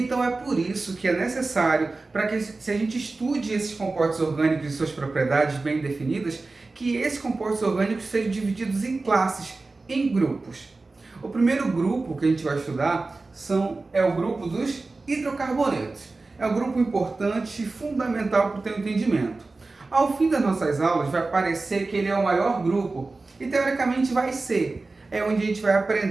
é por isso que é necessário, para que se a gente estude esses compostos orgânicos e suas propriedades bem definidas, que esses compostos orgânicos sejam divididos em classes, em grupos. O primeiro grupo que a gente vai estudar é o grupo dos hidrocarbonetos. É um grupo importante e fundamental para o teu entendimento. Ao fim das nossas aulas vai parecer que ele é o maior grupo, e teoricamente vai ser. É onde a gente vai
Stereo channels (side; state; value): left; quieter; 3.5 dB